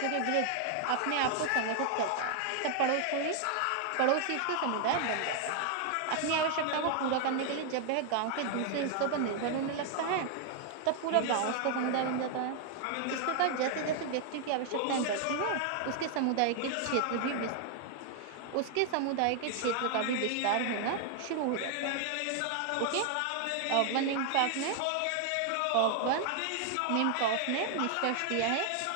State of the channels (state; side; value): different; both; correlation 0.00